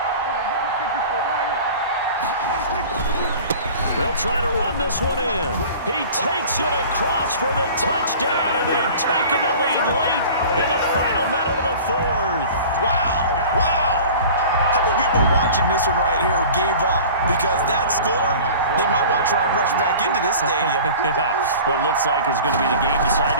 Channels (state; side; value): inverted; both; correlation -0.41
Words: They'll try to run this one in. He takes it across for the touchdown, and they've taken the lead late in the final minute of the 4th. Wow, wow. How many people are watching this one right here who gave up? Because that score, they might want to try and rush back into this stadium. Yeah, what looks like is going to be the